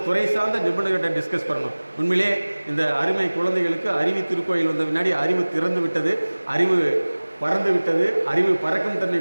துறை சார்ந்த நிபுணர்கிட்ட டிஸ்கஸ் பண்ணணும். உண்மையிலே இந்த அருமை குழந்தைகளுக்கு அறிவு திருக்கோயில் வந்த முன்னாடி அறிவு திறந்து விட்டது, அறிவு பறந்து விட்டது, அறிவு பறக்கும் தன்மை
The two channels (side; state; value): both; inverted; correlation -1.00